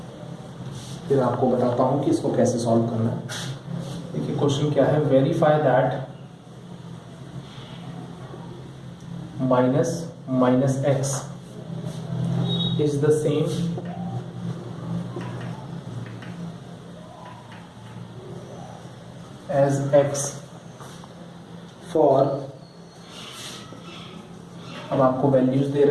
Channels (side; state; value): both; identical; correlation 1.00